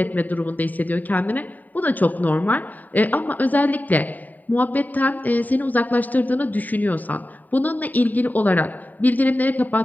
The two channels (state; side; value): late; right; 0.083 ms